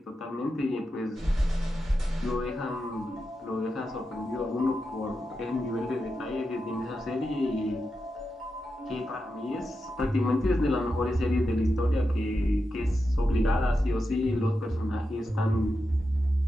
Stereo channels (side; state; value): both; normal; correlation 0.89